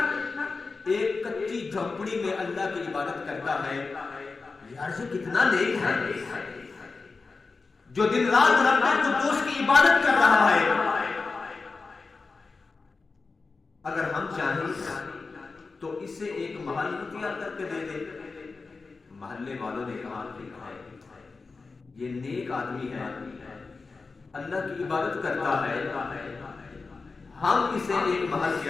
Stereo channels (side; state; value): right; quieter; 4.2 dB